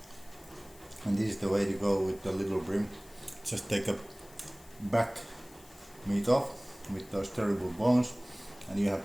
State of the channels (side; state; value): left; noise; hiss, 24 dB below the sound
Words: And this is the way to go with the little bream. Just take a back meat off with those terrible bones, and you